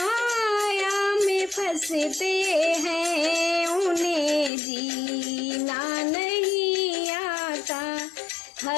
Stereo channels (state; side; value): drops out; right; at 4.5 s